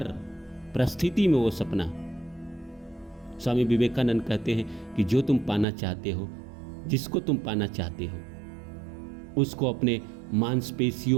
परिस्थिति में वो सपना। स्वामी विवेकानंद कहते हैं कि जो तुम पाना चाहते हो, जिसको तुम पाना चाहते हो, उसको अपने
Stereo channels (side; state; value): left; drops out; at 5.7 s